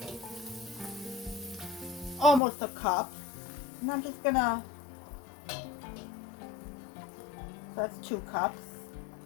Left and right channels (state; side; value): drops out; right; at 2.4 s